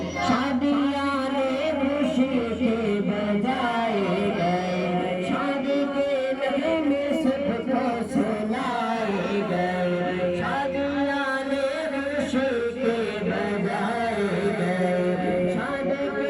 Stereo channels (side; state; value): both; identical; correlation 1.00